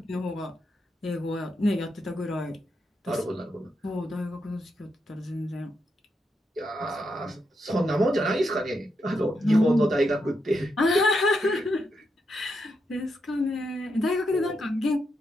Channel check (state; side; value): normal; both; correlation 0.83